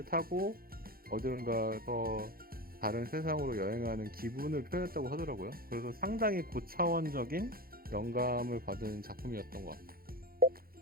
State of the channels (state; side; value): late; left; 0.43 ms